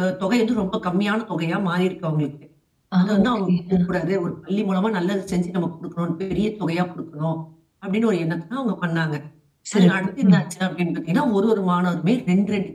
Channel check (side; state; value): both; identical; correlation 1.00